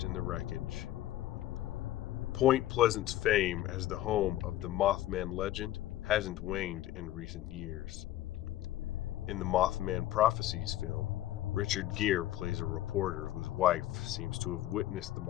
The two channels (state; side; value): quieter; right; 14.3 dB